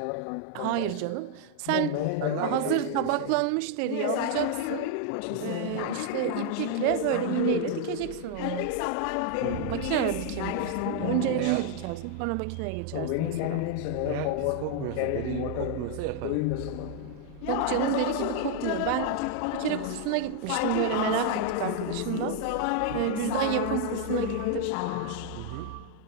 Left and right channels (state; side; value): different; both; correlation 0.00